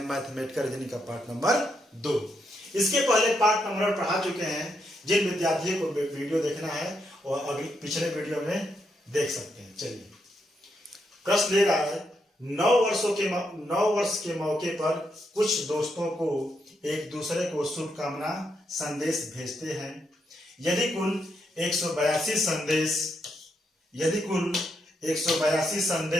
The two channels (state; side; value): normal; both; correlation 0.80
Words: मैथमेटिकल रीजनिंग का पार्ट नंबर 2। इसके पहले पार्ट नंबर पढ़ा चुके हैं। जिन विद्यार्थियों को वीडियो देखना है और अगले पिछले वीडियो में देख सकते हैं। चलिए, प्रश्न ले रहा है 9 वर्ष के मौके पर कुछ दोस्तों को एक दूसरे को शुभकामना संदेश भेजते हैं। यदि कुल 182